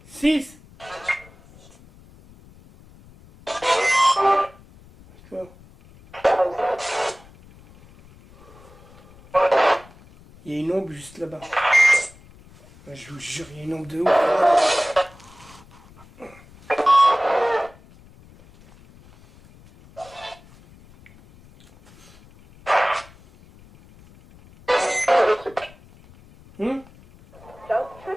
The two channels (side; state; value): left; noise; rumble, 24 dB below the sound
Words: Six. D'accord. Il y a une ombre juste là-bas. Je vous jure, il y a une ombre de ouf.